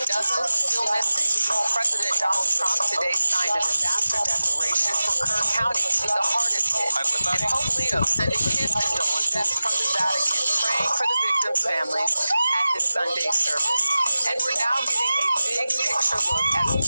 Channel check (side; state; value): both; inverted; correlation -0.96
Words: dozens still missing. President Donald Trump today signed a disaster declaration for Kerr County, the hardest hit. And Pope Leo sending his condolences from the Vatican, praying for the victims' families at his Sunday service. And we're now getting a big picture look at